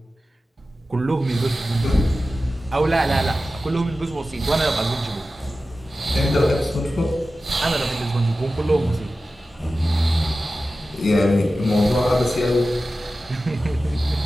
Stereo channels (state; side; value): normal; both; correlation 0.94